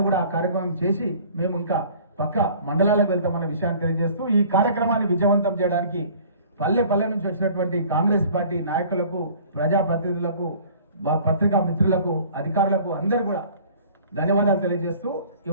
కూడా ఆ కార్యక్రమం చేసి మేము ఇంకా పక్క మండలాలకు వెళ్తామన్న విషయాన్ని తెలియజేస్తూ, ఈ కార్యక్రమాన్ని విజయవంతం చేయడానికి పల్లె నుంచి వచ్చినటువంటి కాంగ్రెస్ పార్టీ నాయకులకు, ప్రజాప్రతినిధులకు, పత్రికా మిత్రులకు, అధికారులకు అందరూ కూడా ధన్యవాదాలు తెలియజేస్తూ,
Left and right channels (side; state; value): both; inverted; correlation -0.49